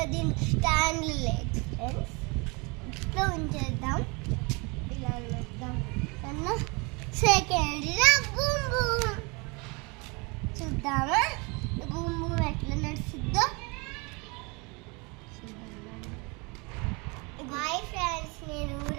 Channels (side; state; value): left; quieter; 29.1 dB